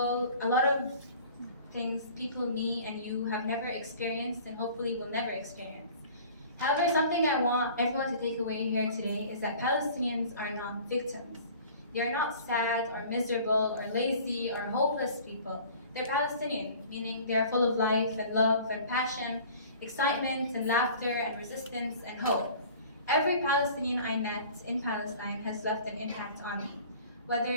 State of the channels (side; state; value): both; inverted; correlation -0.47